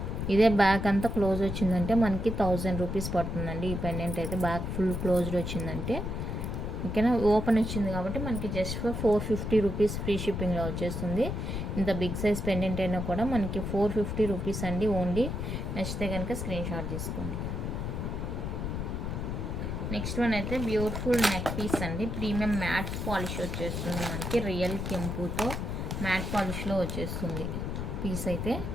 ఇదే బ్యాక్ అంతా క్లోజ్ వచ్చిందంటే మనకి 1000 రూపీస్ పడుతుందండి. ఈ పెండెంట్ అయితే బ్యాక్ ఫుల్ క్లోజ్డ్ వచ్చిందంటే, ఓకేనా. ఓపెన్ వచ్చింది కాబట్టి మనకి జస్ట్ ఫర్ 450 రూపీస్ ఫ్రీ షిప్పింగ్లో వచ్చేస్తుంది. ఇంత బిగ్ సైజ్ పెండెంట్ అయినా కూడా మనకి 450 రూపీస్ అండి ఓన్లీ. నచ్చితే కనుక స్క్రీన్ షాట్ తీసుకోండి. నెక్స్ట్ వన్ అయితే బ్యూటిఫుల్ నెక్ పీస్ అండి. ప్రీమియం మ్యాట్ పాలిష్ వచ్చేస్తుంది మనకి. రియల్ కెంపుతో మ్యాట్ పాలిష్లో వచ్చేస్తుంది పీస్ అయితే.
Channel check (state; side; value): noise; left; rumble, 3 dB below the sound